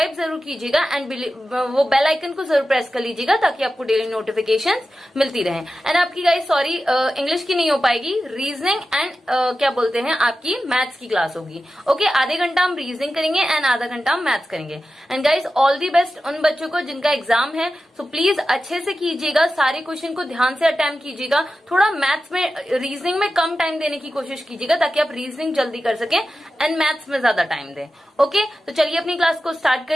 जरूर कीजिएगा एंड वो बेल आइकन को जरूर प्रेस कर लीजिएगा, ताकि आपको डेली नोटिफिकेशन मिलती रहे। एंड आपकी गाइज सॉरी इंग्लिश की नहीं हो पाएगी, रीजनिंग एंड क्या बोलते हैं आपकी मैथ्स की क्लास होगी। ओके, आधे घंटा हम रीजनिंग करेंगे एंड आधा घंटा हम मैथ्स करेंगे। And guys all the best उन बच्चों को जिनका एग्जाम है। सो प्लीज अच्छे से कीजिएगा, सारे क्वेश्चन को ध्यान से अटेम्प्ट कीजिएगा। थोड़ा मैथ्स में, रीजनिंग में कम टाइम देने की कोशिश कीजिएगा, ताकि आप रीजनिंग जल्दी कर सके एंड मैथ्स में ज्यादा टाइम दें। ओके, तो चलिए अपनी क्लास को स्टार्ट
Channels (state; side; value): normal; both; correlation 0.92